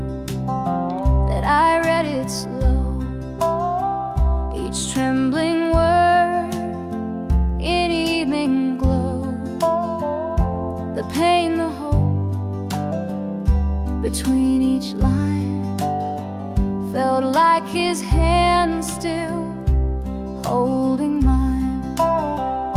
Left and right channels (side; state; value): both; identical; correlation 1.00